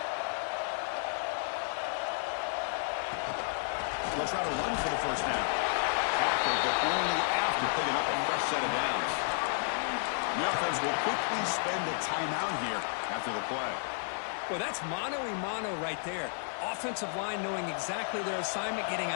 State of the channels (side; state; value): right; silent; 56 dB below the other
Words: They'll try to run for the first down. Tackled, but only after picking up a fresh set of downs. The offense will quickly spend a timeout here after the play. Well, that's mano-a-mano right there. Offensive line knowing exactly their assignment, getting